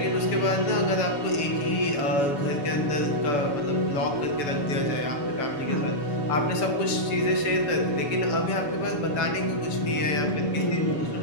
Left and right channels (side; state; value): right; late; 7.0 ms